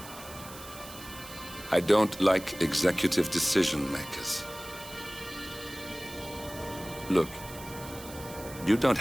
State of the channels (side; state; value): right; noise; hiss, 15 dB below the sound